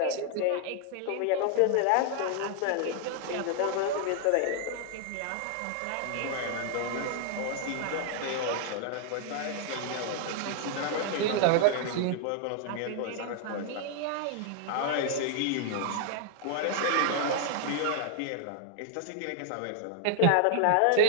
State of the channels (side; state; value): both; different; correlation 0.00